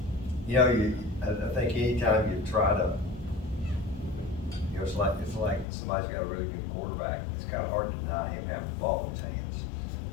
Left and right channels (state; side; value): drops out; right; at 5.7 s